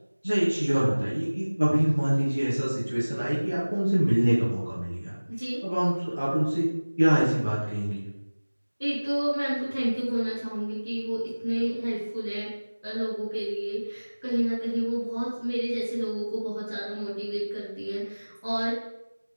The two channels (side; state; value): both; inverted; correlation -1.00